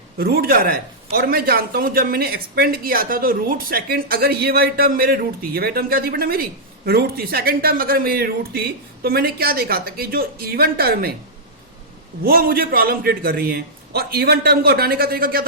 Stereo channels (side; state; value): both; normal; correlation -0.10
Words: रूट जा रहा है। और मैं जानता हूं जब मैंने एक्सपेंड किया था तो रूट सेकंड, अगर ये वाली टर्म मेरे रूट थी, ये वाली टर्म क्या थी बेटा मेरी रूट थी, सेकंड टर्म अगर मेरी रूट थी, तो मैंने क्या देखा था कि जो इवन टर्म है वो मुझे प्रॉब्लम क्रिएट कर रही है। और इवन टर्म को हटाने का तरीका क्या